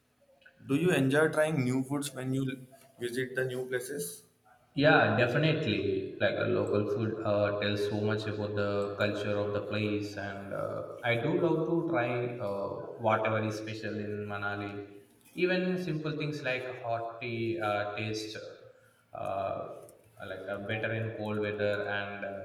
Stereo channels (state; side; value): identical; both; correlation 1.00